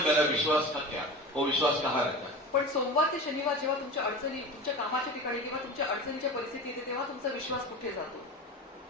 मेरा विश्वास का क्या, वो विश्वास कहाँ रहता है? पण सोमवार ते शनिवार जेव्हा तुमच्या अडचणी, तुमच्या कामाच्या ठिकाणी किंवा तुमच्या अडचणीच्या परिस्थिती येते तेव्हा तुमचा विश्वास कुठे जातो?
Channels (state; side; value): normal; both; correlation 0.31